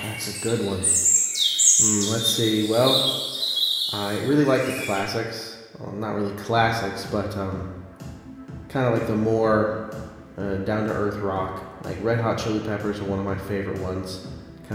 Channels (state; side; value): identical; both; correlation 1.00